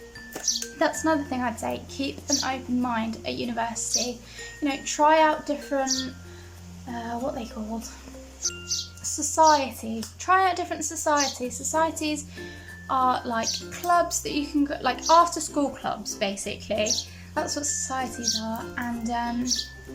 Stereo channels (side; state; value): both; identical; correlation 1.00